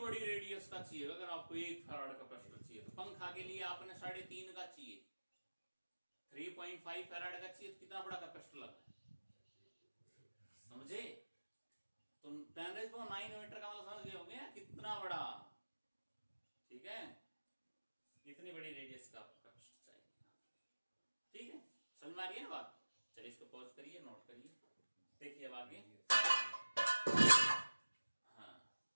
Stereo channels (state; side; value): inverted; both; correlation -1.00